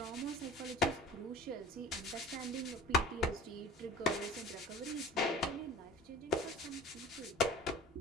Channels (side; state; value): both; normal; correlation 0.42